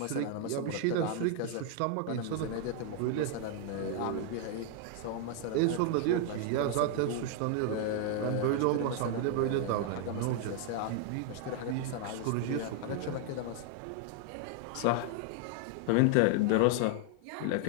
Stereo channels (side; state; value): both; different; correlation 0.00